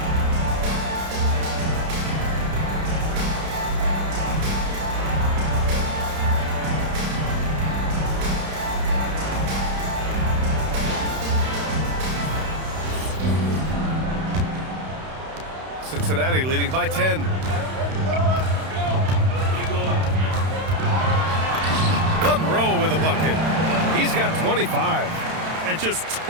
Cincinnati leading by 10. Monroe with a bucket. He's got 25. And just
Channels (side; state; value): left; late; 31 ms